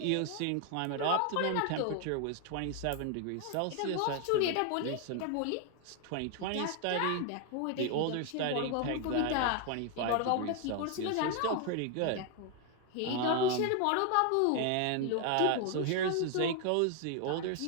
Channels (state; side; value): different; both; correlation 0.00